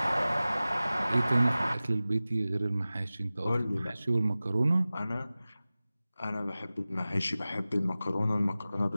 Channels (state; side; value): inverted; both; correlation -0.97